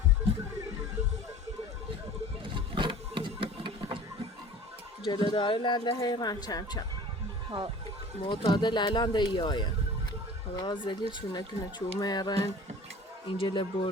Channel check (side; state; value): both; normal; correlation 0.43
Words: جلو داره لنده حیران چم ها معتادل الان ده ایایه خدا زلی چونه کنه چومه ایران اینجل